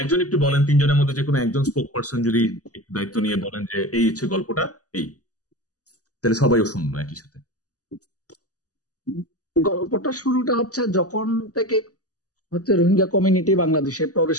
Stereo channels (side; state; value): right; late; 0.67 ms